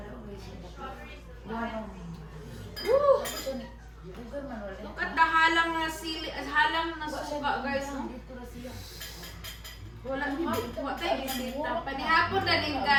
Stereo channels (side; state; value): both; identical; correlation 1.00